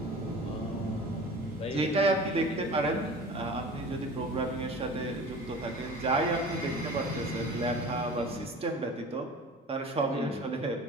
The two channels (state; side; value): normal; both; correlation 0.39